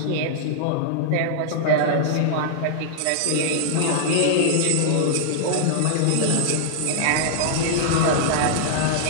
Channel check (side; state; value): both; different; correlation -0.01